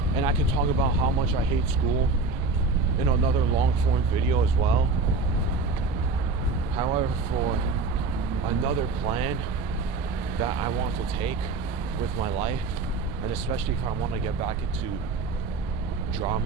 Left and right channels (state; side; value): quieter; left; 3.9 dB